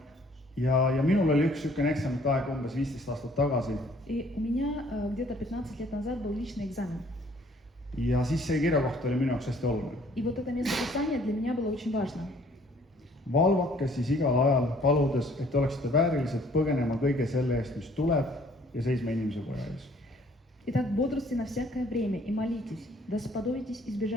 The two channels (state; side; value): normal; both; correlation 0.59